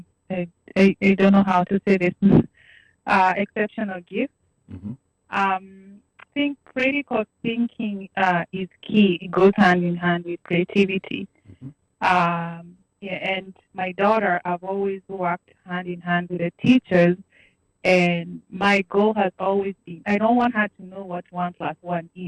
don't know how to say this, exceptional gifts. Mm-hmm. I think critical thinking is key. It goes hand in hand with creativity. Mm-hmm. Yeah, and my daughter, I've always worked hand in hand with the teachers. And my goal has always been, I don't want her to know what 1 plus 1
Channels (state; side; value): identical; both; correlation 1.00